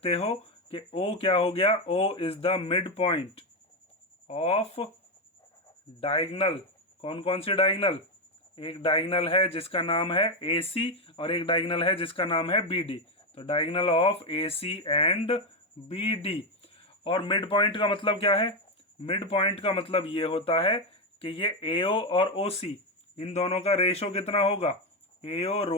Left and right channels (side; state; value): both; normal; correlation 0.08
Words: हो कि O क्या हो गया, O is the mid point of diagonal. कौन कौन सी डायगोनल, एक डायगोनल है जिसका नाम है AC और एक डायगोनल है जिसका नाम है BD। तो diagonal of AC and BD। और मिड पॉइंट का मतलब क्या है, मिड पॉइंट का मतलब ये होता है कि ये AO और OC इन दोनों का रेशो कितना होगा,